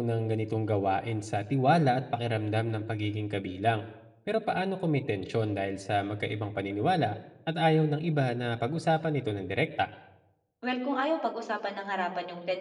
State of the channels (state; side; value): identical; both; correlation 1.00